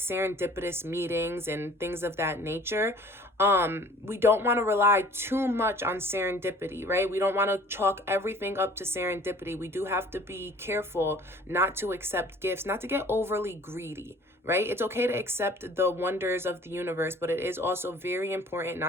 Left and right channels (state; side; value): normal; both; correlation 0.50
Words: meetings and things of that nature. We don't want to rely too much on serendipity, right? We don't want to chalk everything up to serendipity. We do have to be careful not to accept gifts, not to get overly greedy, right? It's okay to accept the wonders of the universe, but it is also very important